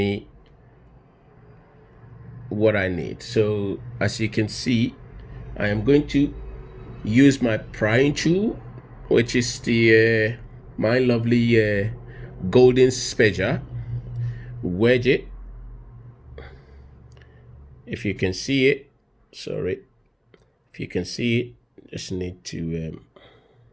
what I need. So as you can see, I am going to use my prying tool, which is the my lovely golden spedger. Wedge it. If you can see it, sorry, if you can see it, just need to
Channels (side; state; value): both; identical; correlation 1.00